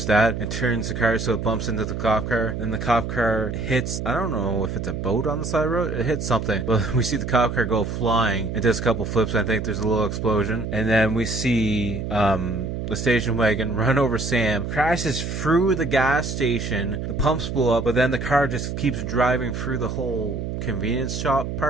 dad, and turns the car so it bumps into the cop car. Then the cop car hits, I don't know if it's a boat on the side of the road, it hits something. But we see the cop car go flying and does a couple flips, and I think there's a little explosion. And then we see the station wagon run over Sam, crashes through the gas station, the pumps blow up, but then the car just keeps driving through the whole convenience shop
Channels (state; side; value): noise; right; hum, 4 dB below the sound